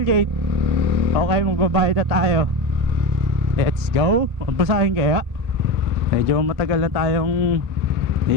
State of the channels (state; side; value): late; left; 1.8 ms